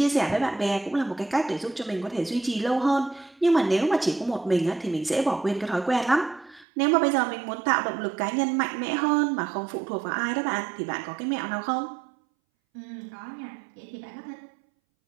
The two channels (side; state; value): left; drops out; at 6.7 s